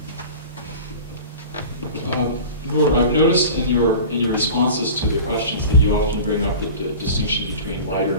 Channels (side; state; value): both; inverted; correlation -0.36